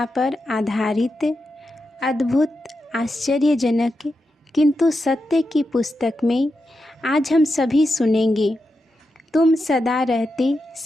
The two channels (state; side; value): normal; both; correlation 0.88